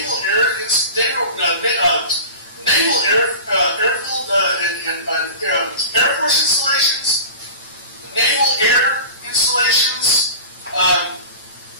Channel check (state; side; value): inverted; both; correlation -0.35